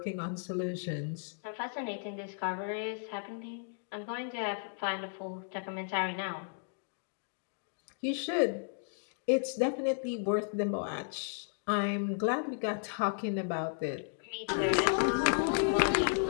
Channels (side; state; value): right; silent; digital silence